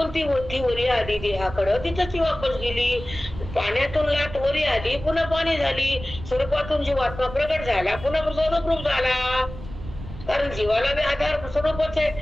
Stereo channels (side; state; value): right; noise; rumble, 12 dB below the sound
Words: ती वरी आली देहाकडं, तिथं ती वापस गेली. पाण्यातून लाट वरी आली, पुन्हा पाणी झाली. स्वरूपातून जीवात्मा प्रगट झाला, पुन्हा स्वरूप झाला. कारण जीवाला बी आधार स्वरूपच